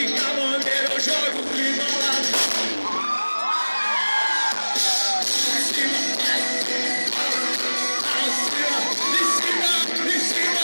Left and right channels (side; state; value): both; inverted; correlation -1.00